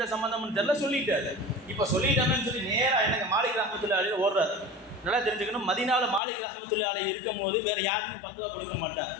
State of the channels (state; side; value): drops out; right; at 6.2 s